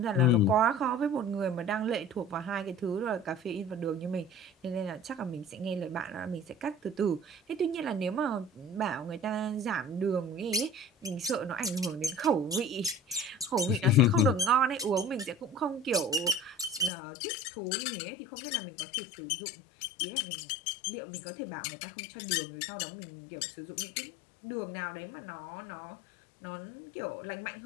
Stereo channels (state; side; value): drops out; right; at 16.9 s